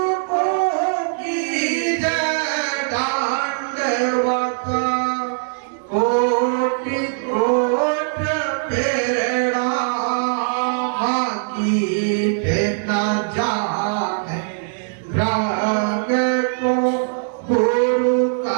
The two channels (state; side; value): silent; left; digital silence